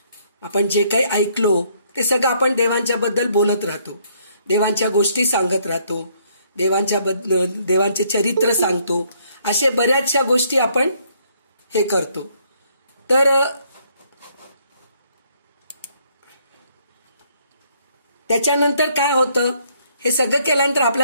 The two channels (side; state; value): both; inverted; correlation -0.68